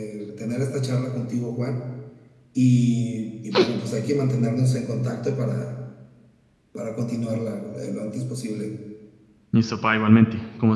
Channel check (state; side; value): identical; both; correlation 1.00